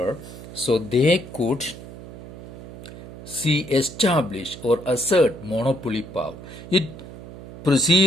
so they could establish or assert monopoly power. It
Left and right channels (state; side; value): noise; right; hum, 15 dB below the sound